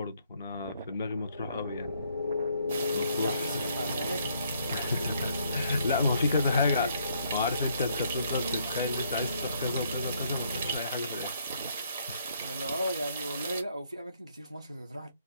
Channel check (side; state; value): both; inverted; correlation -0.69